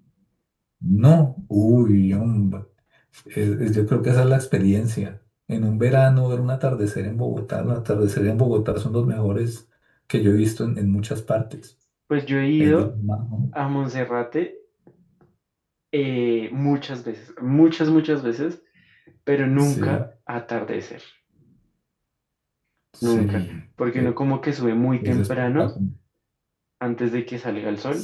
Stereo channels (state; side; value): identical; both; correlation 1.00